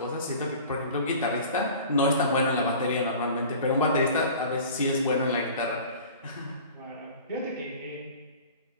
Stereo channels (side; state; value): both; inverted; correlation -0.42